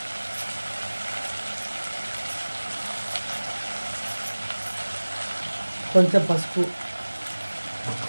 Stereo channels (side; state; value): both; inverted; correlation -1.00